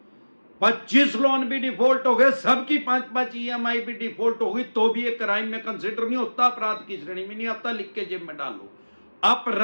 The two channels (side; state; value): both; inverted; correlation -1.00